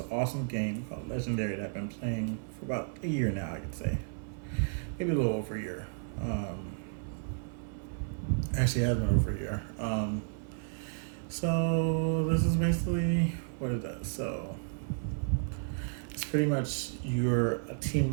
awesome game called Legendary that I've been playing for about a year now, I could say. Maybe a little over a year. Actually, it has been over a year. So this is basically what it does. So it's pretty much you're a team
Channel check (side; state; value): left; silent; 56 dB below the other